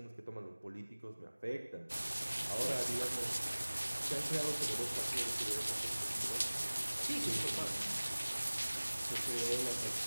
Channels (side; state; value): both; inverted; correlation -1.00